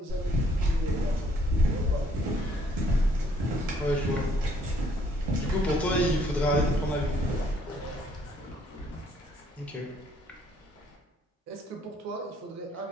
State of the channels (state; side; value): normal; both; correlation 0.65